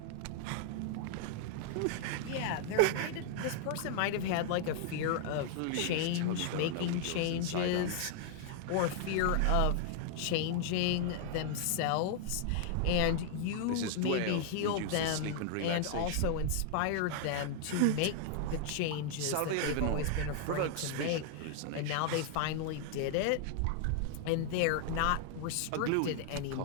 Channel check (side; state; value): both; different; correlation 0.00